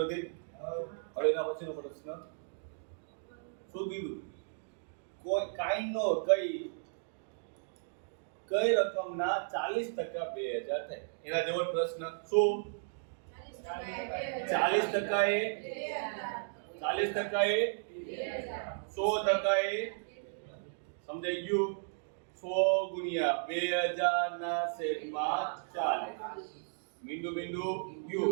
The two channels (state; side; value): silent; left; digital silence